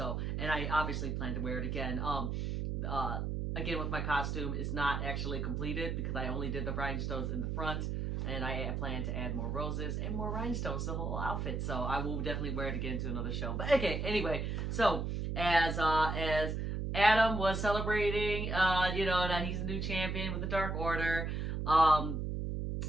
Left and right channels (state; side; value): noise; right; hum, 1 dB below the sound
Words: and I obviously plan to wear it again. Again, with my costume, it's not actually completed because I only did the rhinestones in the front. And I plan to add more roses and more rhinestones to the whole outfit. So I will definitely wear it again to another show. But okay, anyway. So as Adam was celebrating, you know, that he's a new champion with the Dark Order,